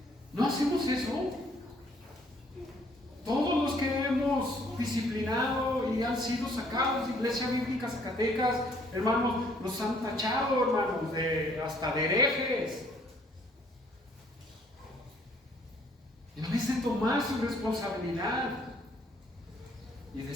¿No hacemos eso? Todos los que hemos disciplinado y han sido sacados de Iglesia Bíblica Zacatecas, hermanos, nos han tachado, hermanos, hasta de herejes. En vez de tomar su responsabilidad y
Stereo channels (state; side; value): normal; both; correlation 0.63